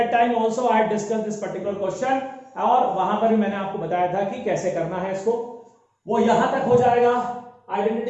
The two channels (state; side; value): identical; both; correlation 1.00